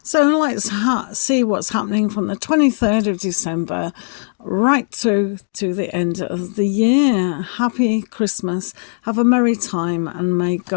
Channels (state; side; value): silent; right; digital silence